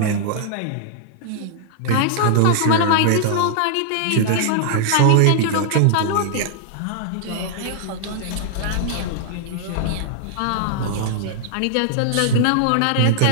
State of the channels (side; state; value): both; different; correlation -0.01